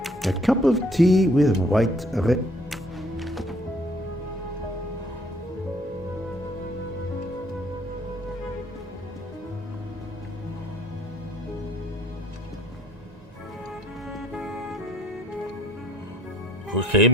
A cup of tea with white red.佢企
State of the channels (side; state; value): both; normal; correlation 0.60